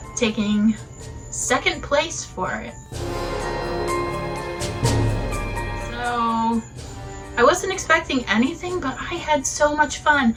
taking second place for it. So I wasn't expecting anything, but I had so much fun.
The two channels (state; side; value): identical; both; correlation 1.00